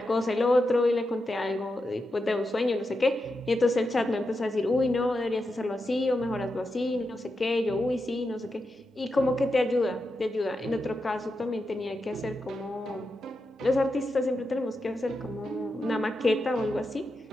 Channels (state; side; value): normal; both; correlation 0.87